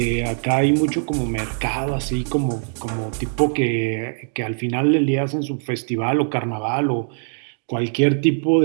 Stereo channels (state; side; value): silent; left; 65 dB below the other